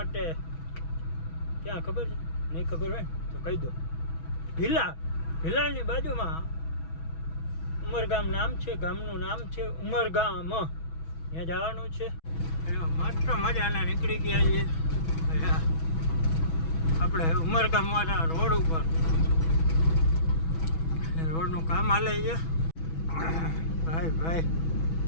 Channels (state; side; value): late; right; 6.2 ms